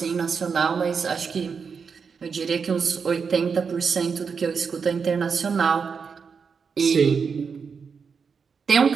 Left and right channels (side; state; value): left; quieter; 5.8 dB